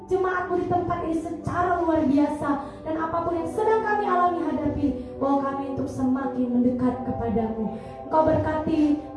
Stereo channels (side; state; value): both; identical; correlation 1.00